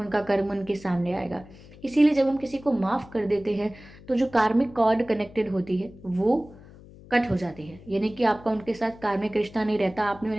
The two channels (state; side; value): noise; left; hum, 20 dB below the sound